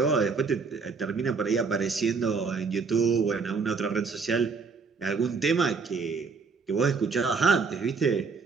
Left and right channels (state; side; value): quieter; left; 4.9 dB